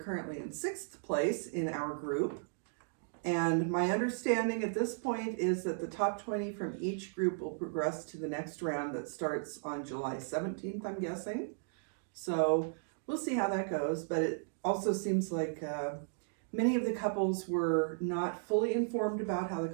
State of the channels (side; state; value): left; silent; digital silence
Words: currently in 6th place in our group. And my understanding at this point is that the top 20 from each group will progress to the next round that starts on July 17th, I'm guessing. So we'll see how that goes. But it also seems like many of the couples were not fully informed about how the